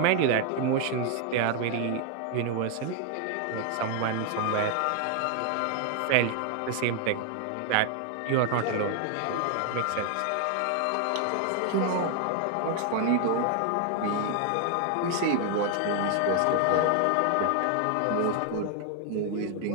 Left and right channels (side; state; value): both; different; correlation 0.00